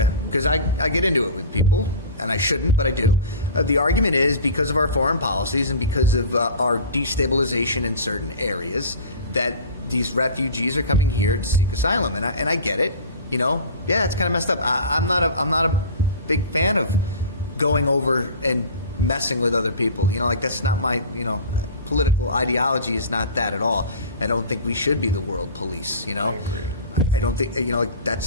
because I get into it with people, and I shouldn't, but I do. The argument is because of our foreign policies and because of our destabilization in certain areas that these refugees are coming here to seek asylum, and I get it. Yeah, it's kind of messed up. I'm not a big fan of going over and messing with other people. That's not my political ideology is not that at all. I don't think we should be the world police. I agree. I don't think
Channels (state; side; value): inverted; both; correlation -0.36